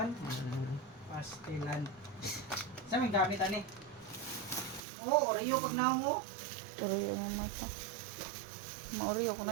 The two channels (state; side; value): drops out; left; at 4.8 s